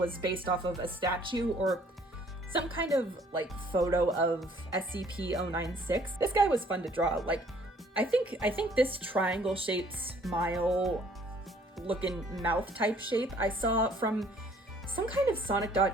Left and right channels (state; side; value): normal; both; correlation 0.60